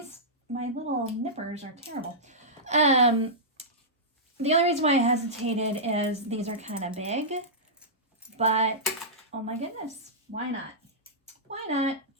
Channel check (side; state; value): both; normal; correlation -0.14